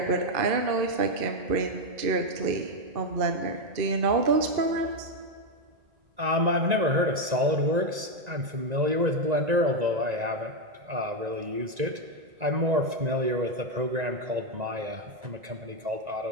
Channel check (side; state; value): left; late; 1.9 ms